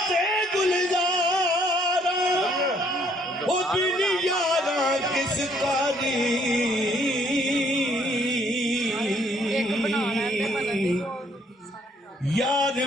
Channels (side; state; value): both; normal; correlation 0.66